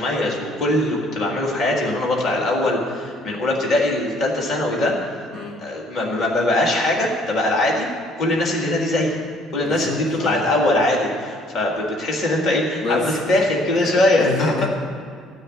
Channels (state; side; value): normal; both; correlation 0.61